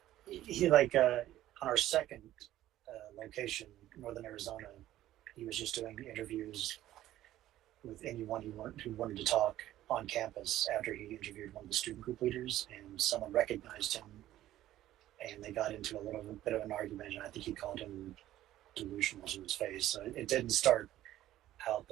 He on our second location, Northern Arizona, he was just doing interviews with anyone who wanted to talk on campus after he interviewed one of the student group leaders, and someone recognized him, and they got into a little bit of an argument, and I think he called him delusional to his face. So it didn't start out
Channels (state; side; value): quieter; left; 13.8 dB